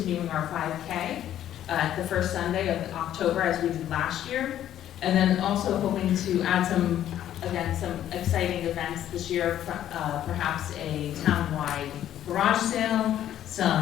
our 5K the first Sunday of October as we did last year. And then also hoping to add some exciting events this year, perhaps a town-wide garage sale,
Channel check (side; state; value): right; quieter; 11.5 dB